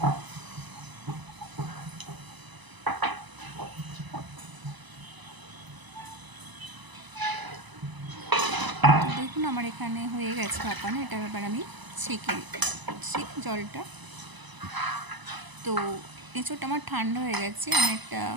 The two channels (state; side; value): late; left; 1.0 ms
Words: তো দেখুন আমার এখানে হয়ে গেছে ভাপানো। এটা এবার আমি ছেঁকে নিচ্ছি জলটা। তো এঁচোড়টা আমার ঠান্ডা হয়ে গেছে। আমি একটা